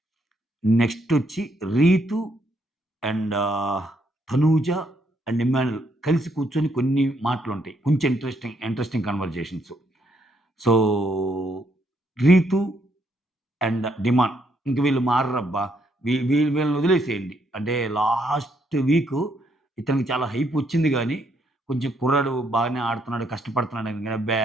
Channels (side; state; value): both; normal; correlation 0.73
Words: నెక్స్టొచ్చి 'రీతు' అండ్ తనూజ అండ్ ఇమ్మాన్యుల్ కలిసి కూర్చొని కొన్ని మాటలుంటాయి. కొంచెం interesting conversations. So, 'Reethu' and 'demand' ఇంక వీళ్ళు మారరబ్బా! వీళ్ళని వదిలేసేయండి. అంటే లాస్ట్ వీకు ఇతనికి చాలా హైప్ వచ్చింది గానీ, కొంచెం కుర్రాడు బాగానే ఆడుతున్నాడు, కష్టపడుతున్నాడని గాని అబ్బే!